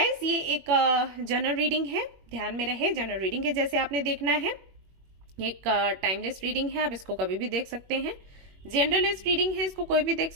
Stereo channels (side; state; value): left; late; 21 ms